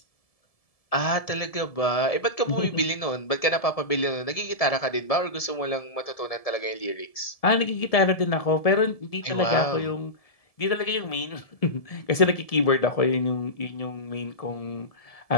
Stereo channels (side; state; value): right; late; 1.7 ms